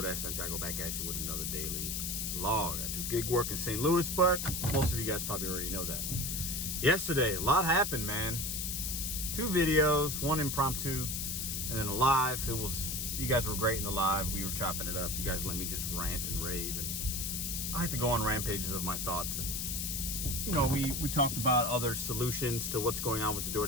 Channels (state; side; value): noise; left; hiss, 2 dB below the sound